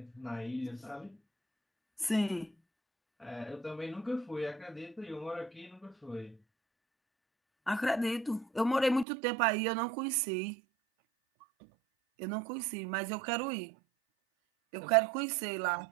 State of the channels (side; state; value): left; drops out; at 9.1 s